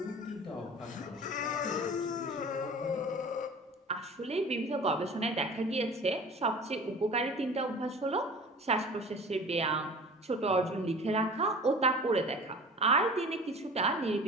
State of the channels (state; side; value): normal; both; correlation 0.41